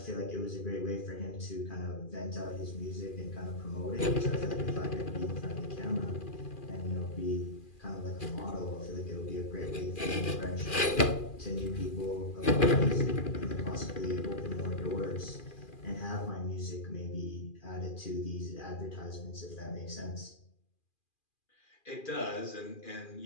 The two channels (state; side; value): late; right; 2.4 ms